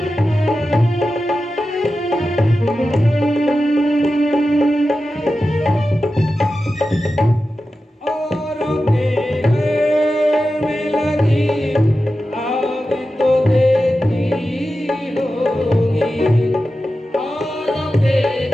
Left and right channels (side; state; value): both; normal; correlation 0.92